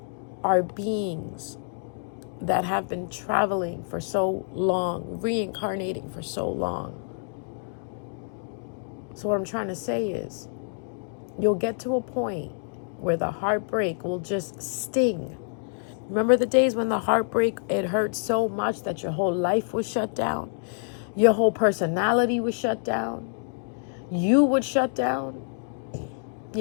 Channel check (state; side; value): silent; right; digital silence